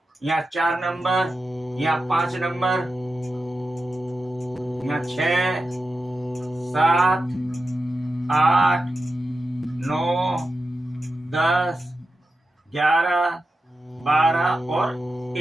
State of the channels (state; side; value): normal; both; correlation 0.91